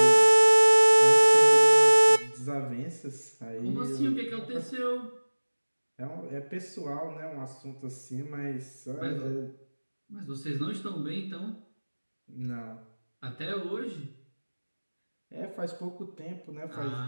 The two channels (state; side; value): inverted; both; correlation -1.00